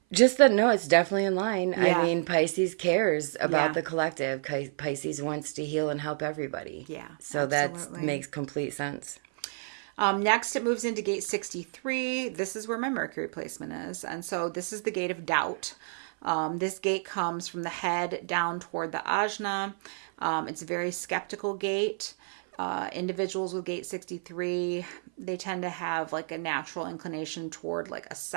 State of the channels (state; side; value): silent; left; 55 dB below the other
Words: Just that, no, it's definitely in line. Yeah. I mean, Pisces cares about the collective. Pisces wants to heal and help everybody. Yeah, so that makes complete sense. Next, it moves into gate 63. This is where my Mercury placement is. And so this is the gate of doubt. This gate comes from the head down toward the ajna. It's a very skeptical gate. Individuals with gate 63, they tend to have like a natural inclination toward like